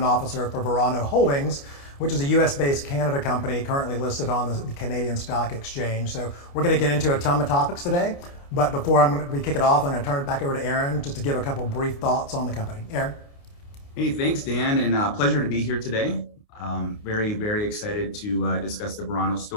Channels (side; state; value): right; late; 29 ms